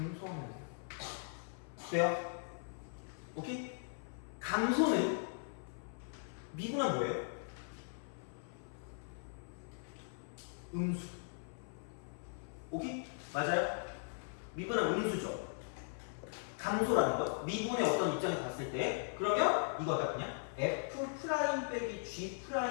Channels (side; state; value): right; silent; 52 dB below the other